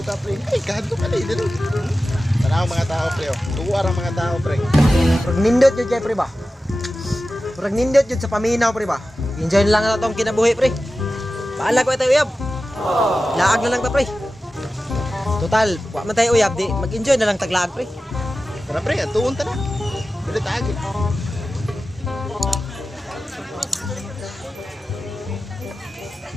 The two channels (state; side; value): normal; both; correlation 0.94